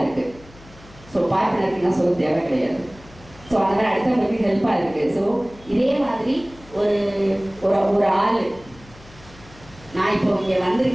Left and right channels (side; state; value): left; noise; hum, 22 dB below the sound